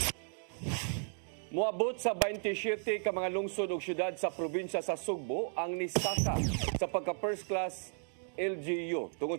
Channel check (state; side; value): silent; left; 55 dB below the other